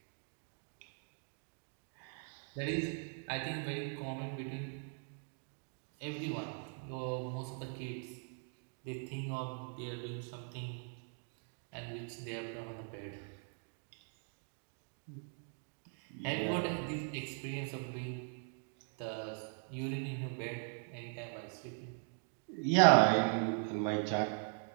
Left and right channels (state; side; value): silent; left; 51 dB below the other